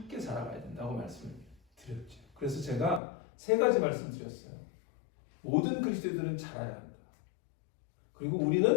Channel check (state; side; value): drops out; right; at 3.0 s